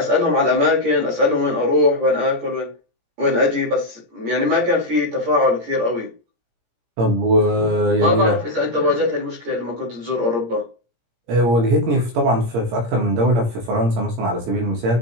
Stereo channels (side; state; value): left; late; 17 ms